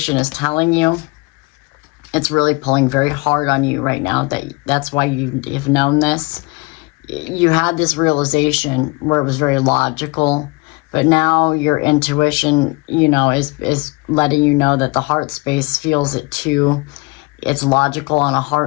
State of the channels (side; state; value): right; quieter; 26.5 dB